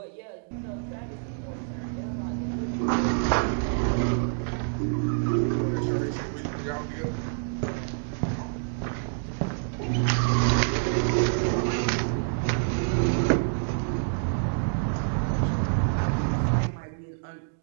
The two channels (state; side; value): silent; left; digital silence